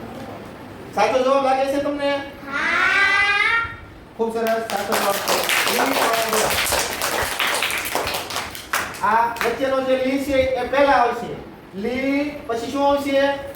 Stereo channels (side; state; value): both; identical; correlation 1.00